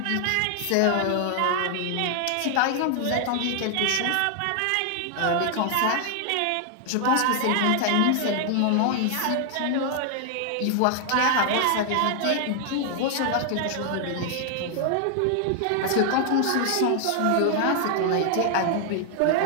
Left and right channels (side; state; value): both; different; correlation 0.00